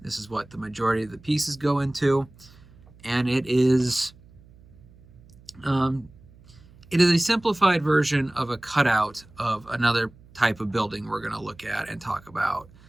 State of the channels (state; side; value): noise; right; hum, 25 dB below the sound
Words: This is what the majority of the pieces go into, and it is a simplified version of a cutout of another type of building we're going to look at and talk about,